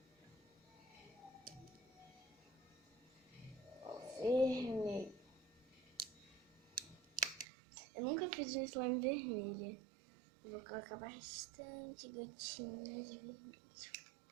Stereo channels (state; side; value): drops out; left; at 7.5 s